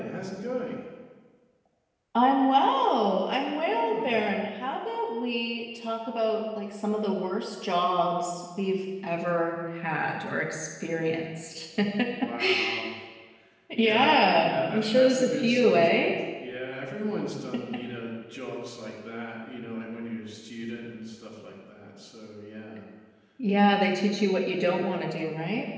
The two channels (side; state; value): both; identical; correlation 1.00